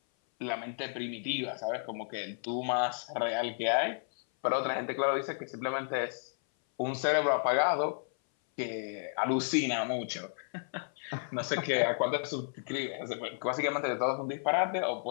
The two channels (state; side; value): silent; right; 56 dB below the other